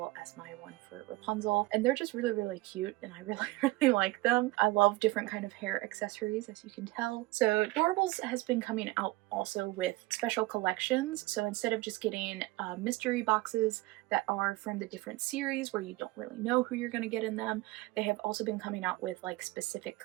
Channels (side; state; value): left; quieter; 20.4 dB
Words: as my one for Rapunzel, and they're just really, really cute, and I really, really like them. I love different kind of hair accessories, as you can tell. So Doorables has been coming out also with special collections. So instead of just getting mystery boxes that are from the different series where you don't really know who you're going to get in them, they have also been coming out with like specific